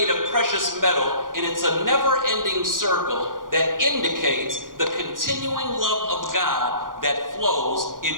of precious metal, and it's a never-ending circle that indicates the continuing love of God that flows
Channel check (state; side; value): late; left; 0.90 ms